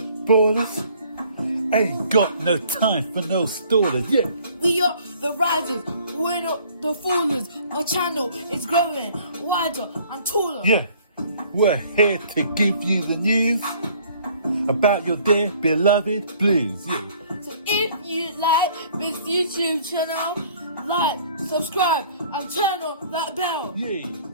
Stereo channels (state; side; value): inverted; both; correlation -0.56